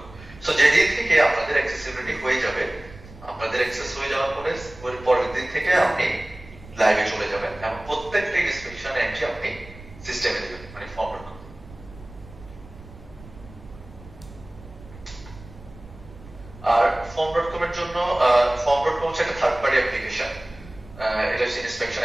সো যেদিন থেকে আপনাদের অ্যাক্সেসিবিলিটি হয়ে যাবে, আপনাদের অ্যাক্সেস হয়ে যাওয়ার পরে ওর পরের দিন থেকে আপনি লাইভে চলে যাবেন এবং প্রত্যেকটা ইন্সপেকশন এন্ট্রি আপনি সিস্টেমে দিবেন, মানে ফর্ম.com। আর ফর্ম.com এর জন্য ফর্ম.com হচ্ছে একটা থার্ড পার্টি অ্যাপ্লিকেশন, এটা হচ্ছে ইন্সপেকশন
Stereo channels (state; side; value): noise; right; rumble, 19 dB below the sound